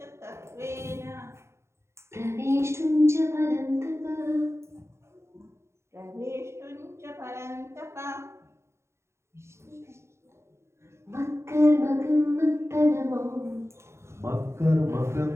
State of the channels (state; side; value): late; left; 0.13 ms